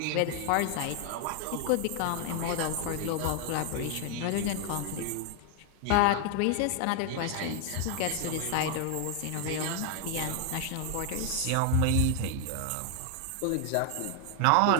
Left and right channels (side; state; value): both; different; correlation 0.00